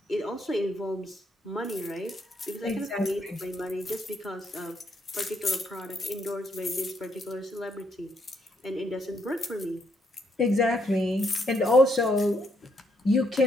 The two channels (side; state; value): both; normal; correlation 0.74